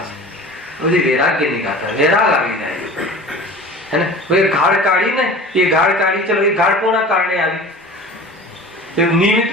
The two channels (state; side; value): normal; both; correlation 0.39